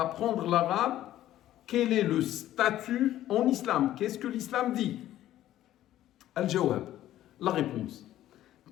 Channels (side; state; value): right; quieter; 13.3 dB